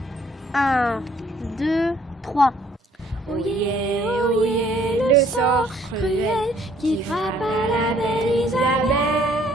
1, 2, 3. Oyez, oyez, le sort cruel qui frappe à la belle Isabelle.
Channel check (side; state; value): both; normal; correlation 0.62